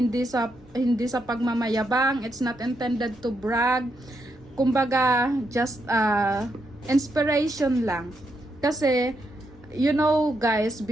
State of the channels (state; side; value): normal; both; correlation 0.80